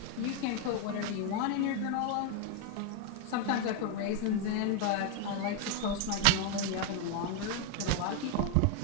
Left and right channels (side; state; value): both; different; correlation 0.00